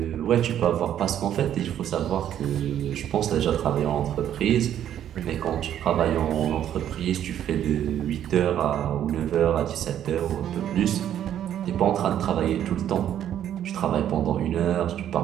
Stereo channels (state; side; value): quieter; left; 10.6 dB